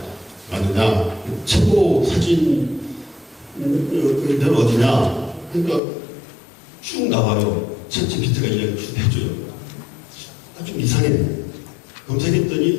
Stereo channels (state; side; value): drops out; right; at 5.8 s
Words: 아느냐 최고 사진 는 어디냐 그러니까 쭉 나와요. 챗GPT가 이렇게 해줘요. 좀 이상해.